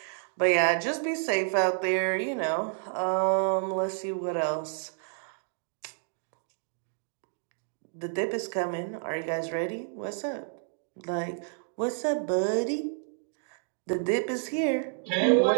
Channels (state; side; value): silent; left; digital silence